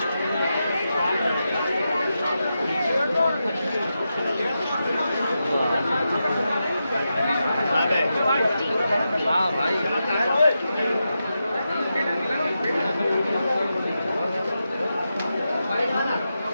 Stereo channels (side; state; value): both; inverted; correlation -0.88